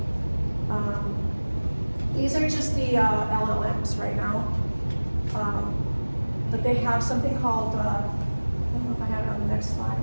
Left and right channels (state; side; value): inverted; both; correlation -1.00